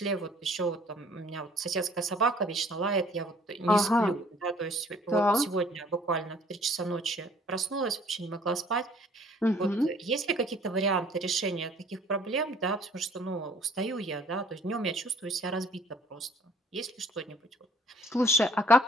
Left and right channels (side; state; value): both; normal; correlation 0.56